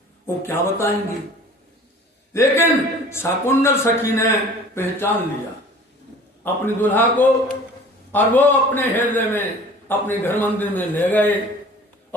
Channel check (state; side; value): normal; both; correlation 0.46